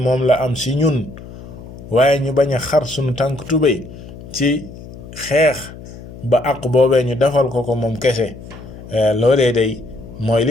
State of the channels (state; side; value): noise; left; hum, 15 dB below the sound